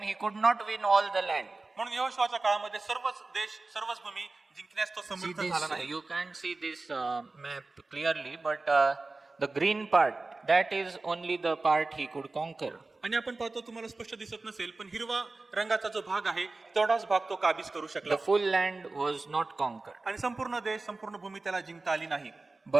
he could not win all the land. म्हणून यहोशुआच्या काळामध्ये सर्वच देश, सर्वच भूमी जिंकण्यास तो See समर्थ this, झाला नाही. you can't see this map clearly, but the green part, that is only the part he could conquer. आणि आपण पाहतो, तुम्हाला स्पष्ट दिसत नसेल, पण हिरवा रंगाचा जो भाग आहे तेवढाच भाग तो काबीज करू शकला. The full land was not conquered. आणि संपूर्ण देश, संपूर्ण भूमी त्याला जिंकता आली नाही.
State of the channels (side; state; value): left; quieter; 3.4 dB